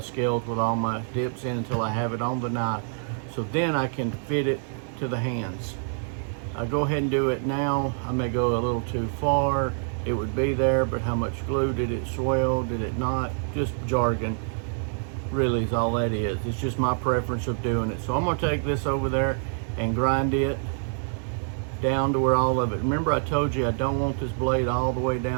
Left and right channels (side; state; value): left; silent; 61 dB below the other